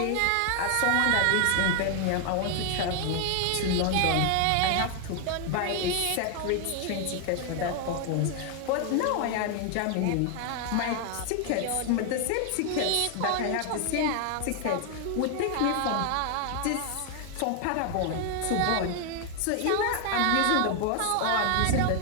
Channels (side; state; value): both; different; correlation 0.00